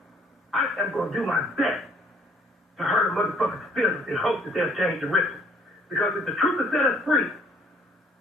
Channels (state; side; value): normal; both; correlation 0.60